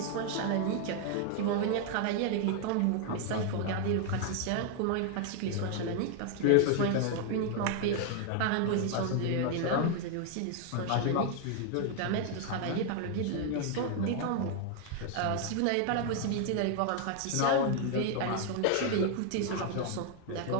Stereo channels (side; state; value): both; different; correlation 0.00